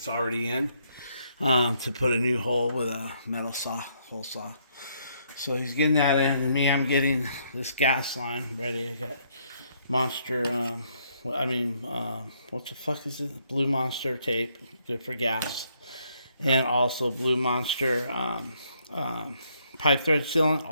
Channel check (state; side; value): inverted; both; correlation -0.71